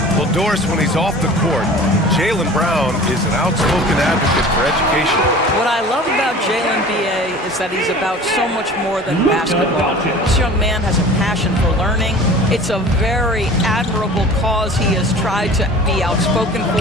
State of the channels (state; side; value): normal; both; correlation 0.42